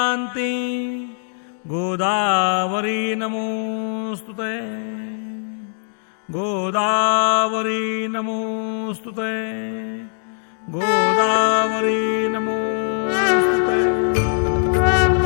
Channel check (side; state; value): right; silent; digital silence